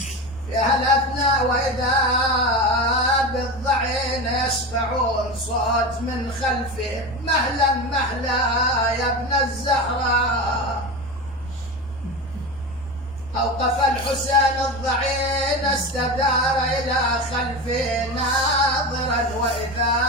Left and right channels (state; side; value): normal; both; correlation 0.24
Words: في هالأثناء وإذا بالضعين يسمعون صوت من خلفه مهلا مهلا يا ابن الزهراء أوقف الحسين الضعين استدار إلى خلفه ناظرا